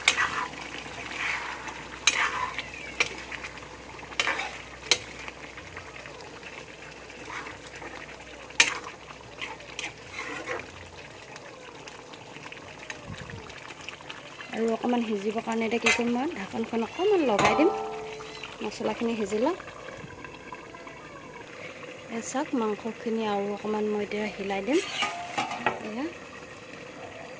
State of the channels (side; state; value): both; identical; correlation 1.00